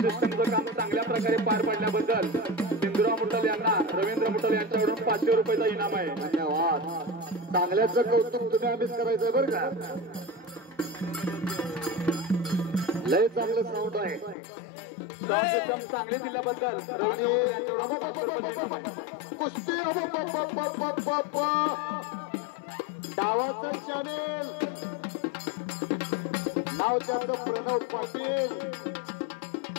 काम चांगल्या प्रकारे पार पाडल्याबद्दल हिंदूराव मुट्टल यांना रवींद्र मुट्टल यांच्याकडून 500 रुपयाचा इनाम आहे. धन्यवाद. चांगल्याचं कौतुक तुम्ही आम्हीच करायचंय बरं का. लय चांगलं साऊंड आहे. साऊंड सिस्टम चांगली दिल्याबद्दल रवींद्र मुट्टल यांच्याकडून 500 रुपयाचा इनाम आहे. कुस्ती डावाचं चॅनेल नाव त्याचं प्रणव पाटील.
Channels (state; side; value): drops out; right; at 14.4 s